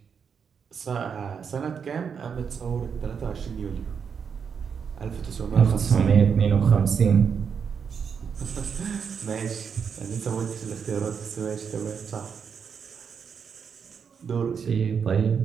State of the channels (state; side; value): quieter; left; 6.7 dB